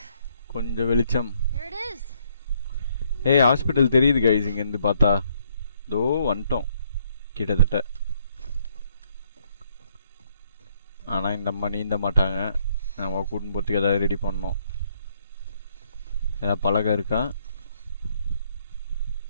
கொஞ்சம் வெளிச்சம். There it is. ஏய், ஹாஸ்பிட்டல் தெரியுது கைஸ் இங்கேருந்து பார்த்தா. தோ வந்துட்டோம் கிட்டத்தட்ட. ஆனால் இந்த அம்மா நீந்த மாட்டாங்க. நம்ம கூட்டின்னு போகிறதுக்கு ஏதாவது ரெடி பண்ணோம். ஏதாவது பலகை இருக்கா?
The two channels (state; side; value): inverted; both; correlation -0.69